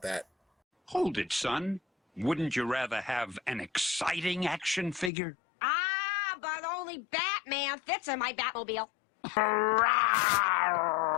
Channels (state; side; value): drops out; right; at 5.1 s